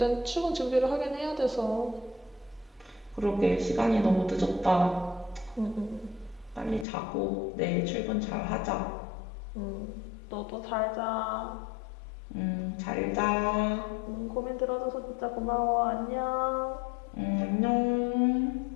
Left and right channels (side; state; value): right; drops out; at 6.9 s